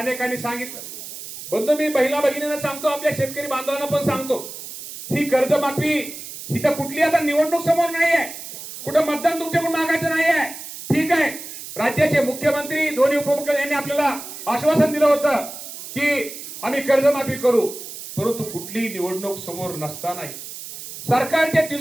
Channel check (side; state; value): right; noise; hiss, 11 dB below the sound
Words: सांगितलं. बंधू, मी महिला भगिनींना सांगतो, आपल्या शेतकरी बांधवांना पण सांगतो, ही कर्जमाफी ही तर कुठली आता निवडणूक समोर नाही आहे, कुठं मतदान तुमच्याकडून मागायचं नाही आहे. ठीक आहे, राज्याचे मुख्यमंत्री, दोन्ही उपमुख्यमंत्री यांनी आपल्याला आश्वासन दिलं होतं की आम्ही कर्जमाफी करू, परंतु कुठली निवडणूक समोर नसताना, सरकारच्या